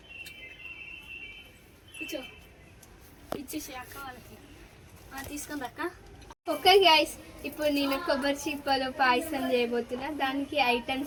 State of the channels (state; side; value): identical; both; correlation 1.00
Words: ఇచ్చేసి అక్క వాళ్ళకి తీసుకుంది అక్క. ఓకే గైస్, ఇప్పుడు నేను కొబ్బరి చిప్పలో పాయసం చేయబోతున్నా. దానికి